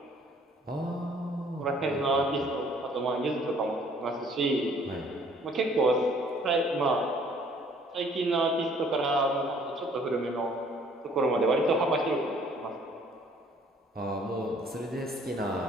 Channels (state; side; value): normal; both; correlation 0.58